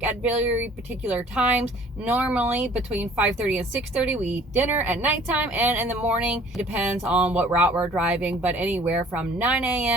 at very particular times. Normally between 5:30 and 6:30, we eat dinner at nighttime, and in the morning, it depends on what route we're driving, but anywhere from 9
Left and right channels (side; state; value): both; normal; correlation 0.53